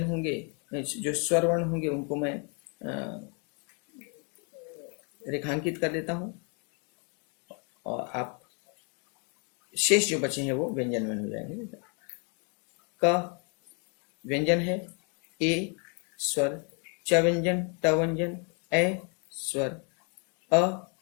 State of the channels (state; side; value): quieter; right; 37.0 dB